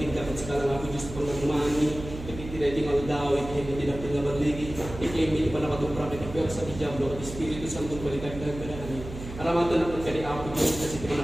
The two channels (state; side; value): noise; right; hum, 11 dB below the sound